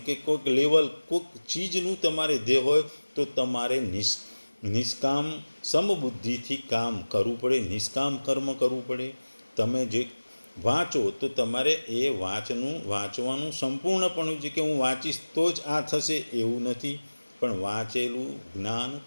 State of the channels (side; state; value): both; inverted; correlation -1.00